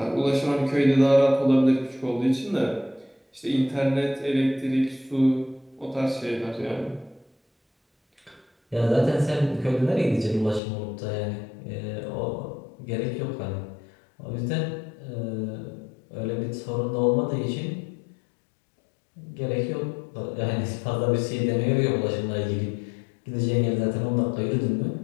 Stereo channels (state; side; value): drops out; right; at 10.6 s